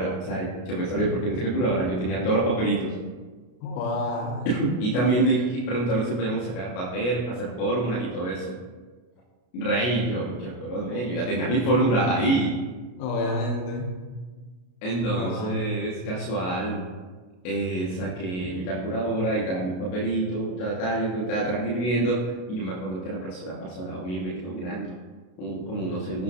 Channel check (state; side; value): late; right; 33 ms